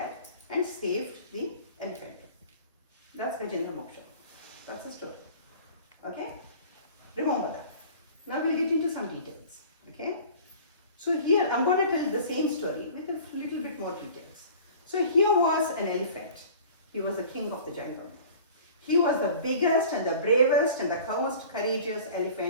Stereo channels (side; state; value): both; inverted; correlation -0.44